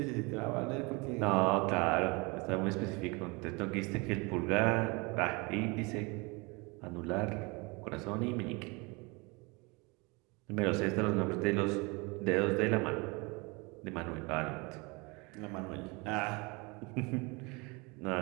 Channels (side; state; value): left; quieter; 27.5 dB